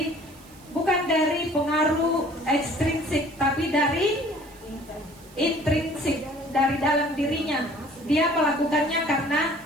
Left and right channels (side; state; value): right; noise; hiss, 24 dB below the sound